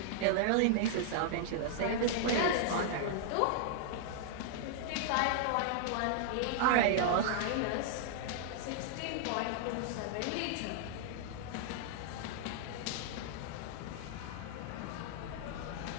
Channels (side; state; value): both; different; correlation -0.01